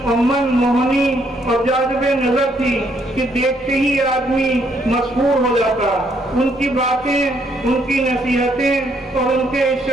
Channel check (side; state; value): both; normal; correlation 0.71